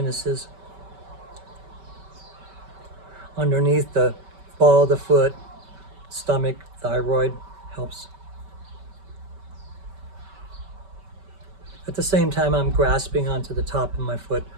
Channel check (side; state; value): left; late; 5.2 ms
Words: Underneath the ball of the foot, stomach, thyroid, helps. At the same time, I'm grasping onto the top of my foot,